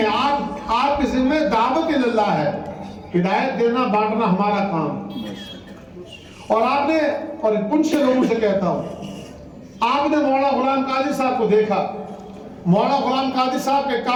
آپ کے ذمہ دعوت اللہ ہے. ہدایت دینا بانٹنا ہمارا کام. اور آپ نے، اور ان سے لوگوں سے کہتا ہوں، آپ نے مولانا غلام قادری صاحب کو دیکھا، مولانا غلام قادری صاحب کے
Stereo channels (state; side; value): identical; both; correlation 1.00